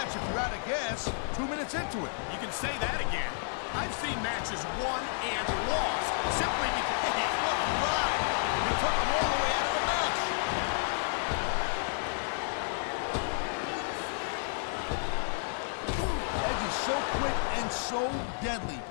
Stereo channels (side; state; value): right; silent; digital silence